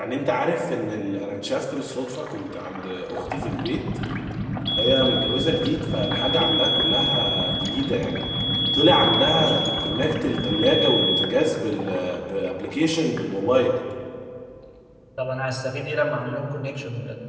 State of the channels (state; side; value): identical; both; correlation 1.00